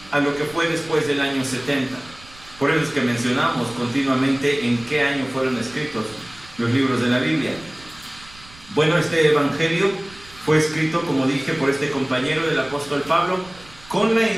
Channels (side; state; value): right; noise; rumble, 22 dB below the sound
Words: a lo que fue después del año 70. Por eso es que mencionamos continuamente en qué año fueron escritos los libros de la Biblia. Bueno, este Evangelio fue escrito, como dije, por este compañero del apóstol Pablo, con la